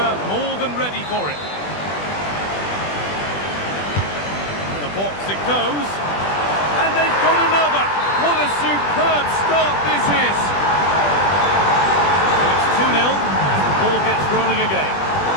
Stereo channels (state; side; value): late; right; 20 ms